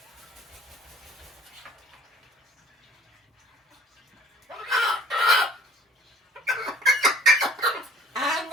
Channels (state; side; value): normal; both; correlation 0.54